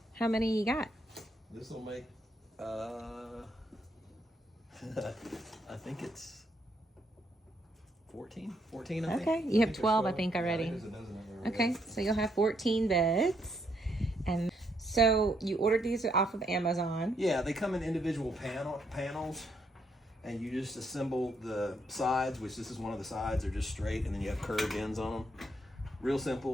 How many you got? This will make, I think it's 14, I think. Okay. You have there's 12, I think, already. Yeah, there's a dozen of them Okay. So you'll have 14 beds. And so you ordered these off of Amazon. Yeah, they come in individual panels, and you just assemble the sides, which this is one of the sides. They're just straight, and then you have curved ends on them. Real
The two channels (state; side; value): normal; both; correlation 0.74